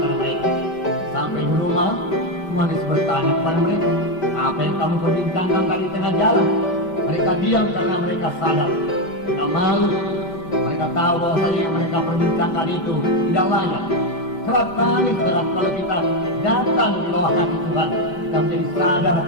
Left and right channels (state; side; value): late; right; 5.1 ms